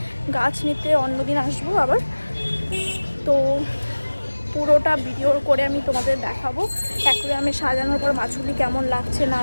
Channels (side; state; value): both; inverted; correlation -1.00